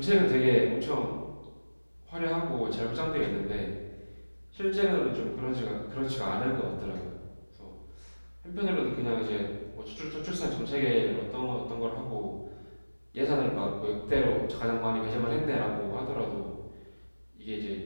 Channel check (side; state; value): both; inverted; correlation -1.00